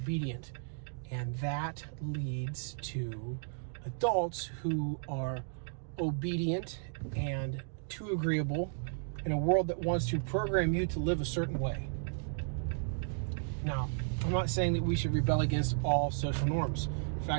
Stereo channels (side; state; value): left; silent; digital silence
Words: and that leads to adults who are obedient and too agreeable in a world that wants to program you to live a certain way. Now, I'm not saying that we should rebel against all social norms. In